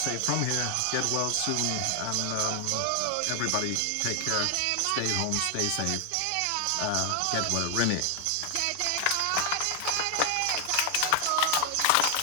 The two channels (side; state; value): both; different; correlation 0.00